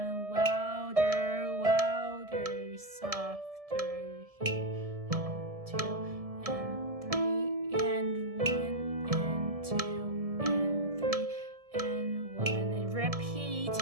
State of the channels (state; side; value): late; left; 1.7 ms